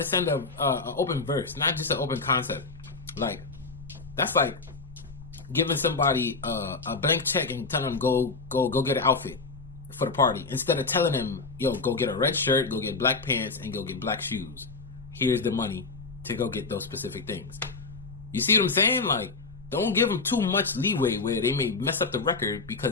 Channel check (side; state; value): right; quieter; 4.1 dB